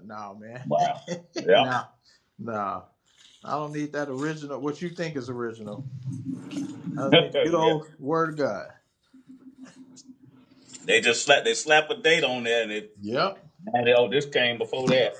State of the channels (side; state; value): both; identical; correlation 1.00